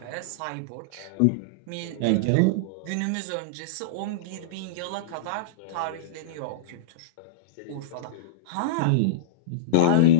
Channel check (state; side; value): different; both; correlation -0.03